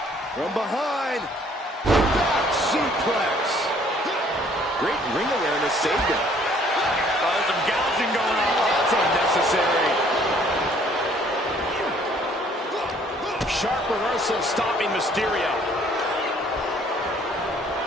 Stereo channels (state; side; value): normal; both; correlation 0.60